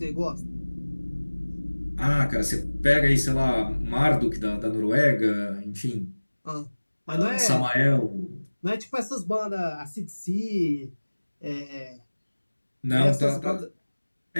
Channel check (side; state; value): both; inverted; correlation -1.00